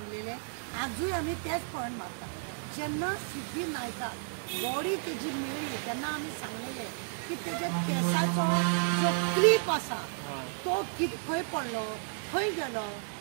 आजूय आमी तेच पॉयंट मारता जेन्ना सिद्धी नायकाक बॉडी तेजी मेळ्ळी तेन्ना आमी सांगलेले की तेज्या केसाचो जो क्लीप आसा तो खंय पडलो खंय गेलो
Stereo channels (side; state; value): left; silent; 56 dB below the other